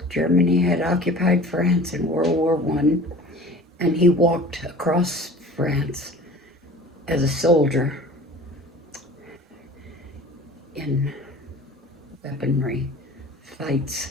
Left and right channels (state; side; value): normal; both; correlation 0.43